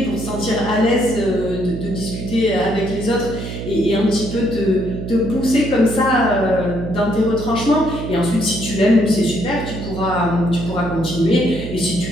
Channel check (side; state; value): right; noise; hum, 7 dB below the sound